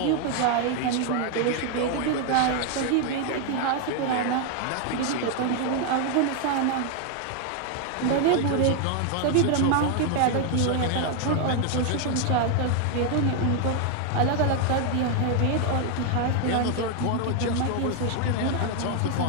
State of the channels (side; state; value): both; different; correlation 0.01